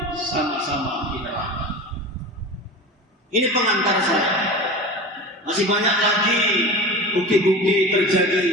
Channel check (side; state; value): both; normal; correlation 0.32